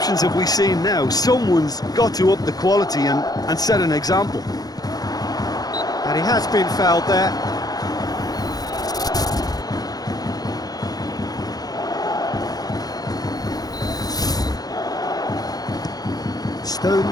have we seen now? Someone's got to up the quality and set an example. And he has been fouled there.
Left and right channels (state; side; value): late; right; 0.19 ms